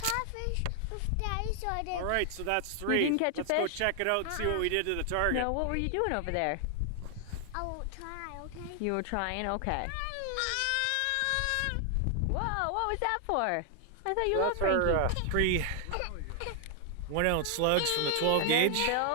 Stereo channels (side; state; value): both; different; correlation 0.00